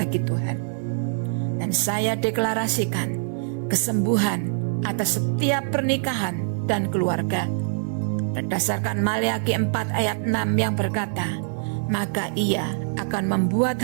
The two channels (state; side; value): silent; left; digital silence